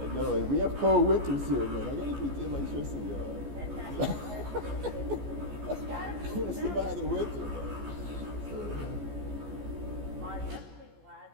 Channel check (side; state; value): left; late; 14 ms